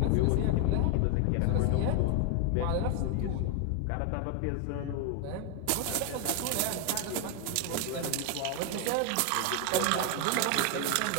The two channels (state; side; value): different; both; correlation 0.00